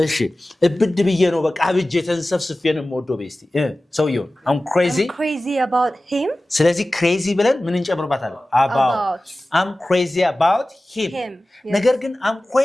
እብድ ብዬ ነው በቃ አብጄ ተንሰፍስፌ ነው የምወደው በይ እስቲ ሰውየው I'm crazy about him ስለዚህ crazy ብለን ምን እንጨምርባታለን about I'm crazy about him ነገር ግን I'm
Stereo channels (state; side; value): normal; both; correlation 0.96